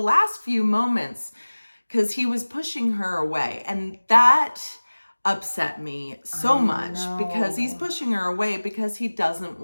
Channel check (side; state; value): both; inverted; correlation -1.00